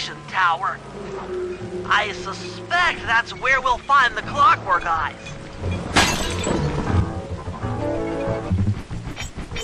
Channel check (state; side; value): identical; both; correlation 1.00